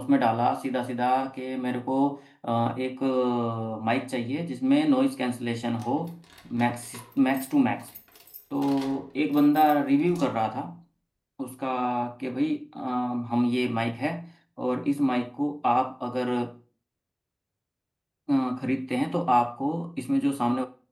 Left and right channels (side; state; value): both; identical; correlation 1.00